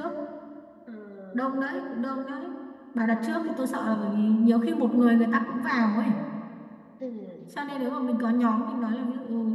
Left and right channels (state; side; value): identical; both; correlation 1.00